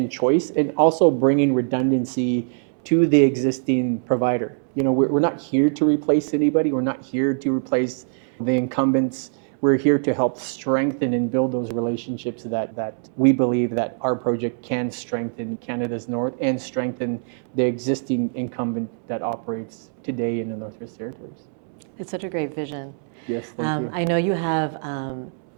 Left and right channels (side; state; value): left; silent; digital silence